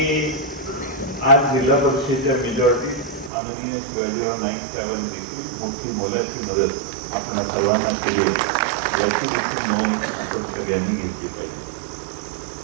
आज जिल्हा परिषदेच्या मेजॉरिटी माननीय शिवाजीराव नाईक साहेबांनी देखील मोठी मोलाची मदत आपण सर्वांना केली याची देखील नोंद आपण सगळ्यांनी घेतली पाहिजे.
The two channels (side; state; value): left; drops out; at 3.3 s